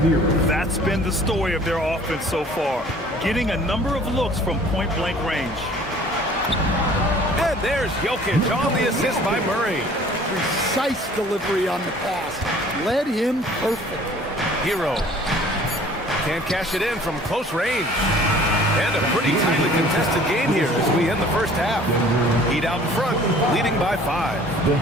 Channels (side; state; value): both; normal; correlation 0.51